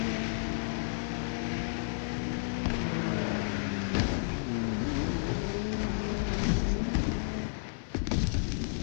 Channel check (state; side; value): silent; right; 56 dB below the other